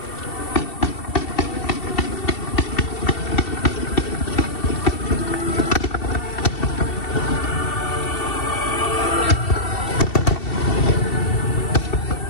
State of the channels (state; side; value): late; right; 2.7 ms